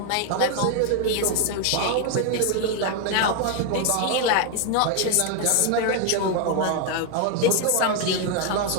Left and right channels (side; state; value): both; different; correlation 0.01